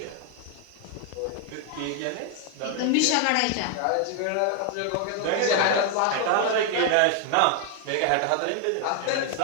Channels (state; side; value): different; both; correlation 0.00